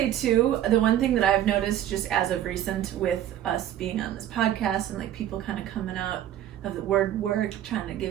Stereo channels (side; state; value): left; quieter; 11.6 dB